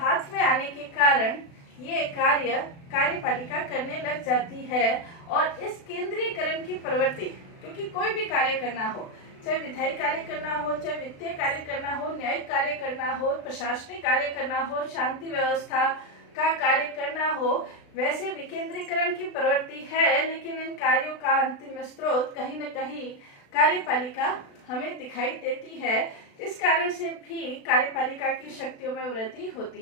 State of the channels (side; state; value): right; late; 36 ms